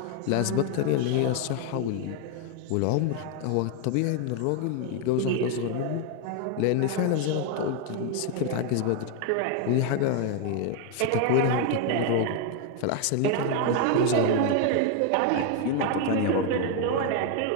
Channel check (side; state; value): both; different; correlation 0.01